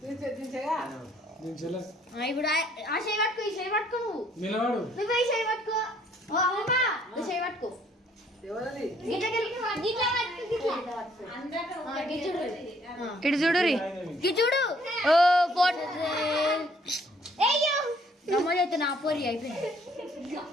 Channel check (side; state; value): both; normal; correlation 0.64